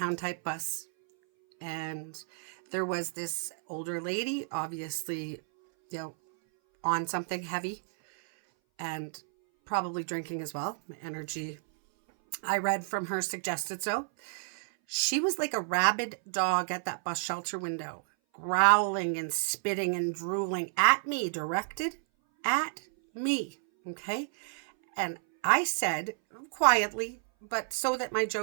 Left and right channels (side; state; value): left; silent; 57 dB below the other